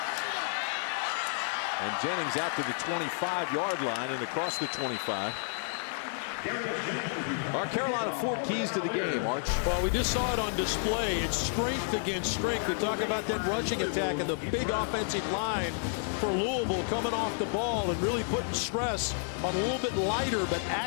And Jennings out to the 25-yard line and across the 25. Our Carolina 4 keys to the game, Arch. Well, we just saw it on display. It's strength against strength. We talk about that rushing attack and the big offensive line for Louisville coming off the ball and really putting stress on a little bit lighter but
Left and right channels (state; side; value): silent; right; 57 dB below the other